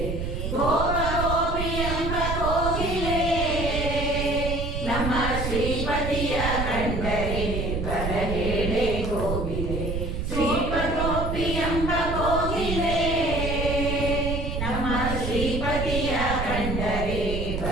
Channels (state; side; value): noise; right; rumble, 3 dB below the sound